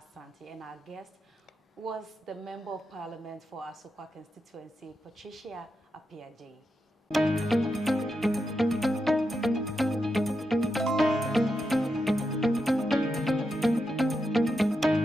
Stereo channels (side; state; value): both; normal; correlation 0.86